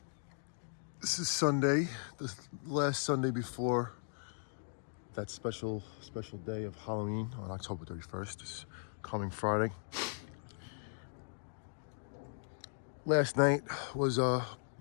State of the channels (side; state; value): right; silent; digital silence